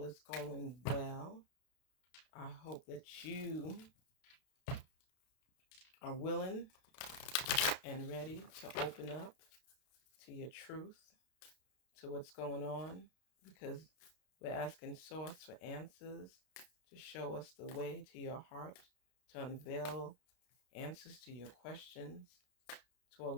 is going well. I hope that you are willing and ready to open up to your truth, to what's going on, because we're asking Source for answers to show us the way to your heart, to unveil answers to your questions, to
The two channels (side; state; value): right; late; 32 ms